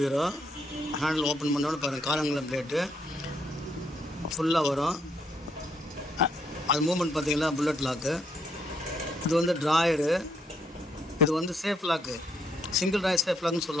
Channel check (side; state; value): both; normal; correlation 0.73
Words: ஹேண்டில் ஓப்பன் பண்ணோட பாருங்கள், காலங்குளம் பிளேட்டு ஃபுல்லாக வரும். அது மூமெண்ட் பார்த்தீங்கன்னா புல்லட் லாக்கு. இது வந்து ட்ராயரு. இது வந்து safe lock, single drawer safe லாக்னு